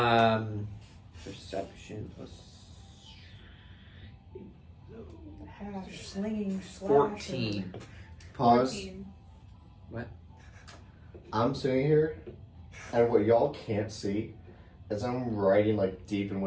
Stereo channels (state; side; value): identical; both; correlation 1.00